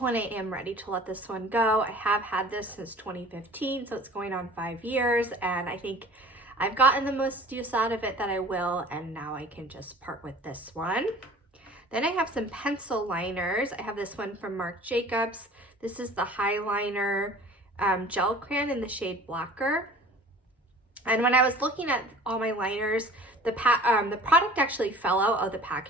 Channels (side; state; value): both; normal; correlation 0.45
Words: I am ready to let this one go. I have had this since 2015, so it's going on 5 years, and I think I've gotten the most use out of it that I will, and now I can just part with this one. Then I have some pencil liners. I have this one from Marc Jacobs. This is the Highliner gel crayon in the shade Blacquer. And when I was looking at all my liners, the product actually fell out of the